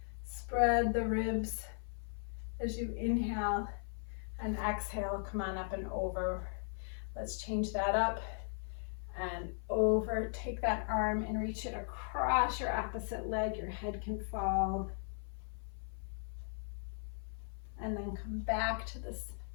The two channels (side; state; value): right; silent; 53 dB below the other